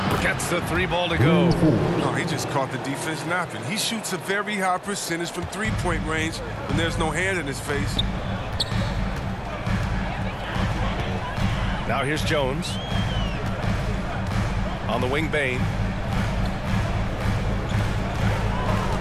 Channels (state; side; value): identical; both; correlation 1.00